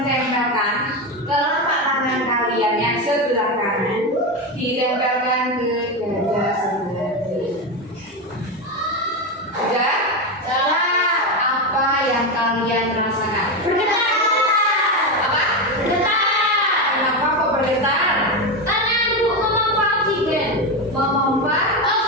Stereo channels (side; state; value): both; normal; correlation 0.14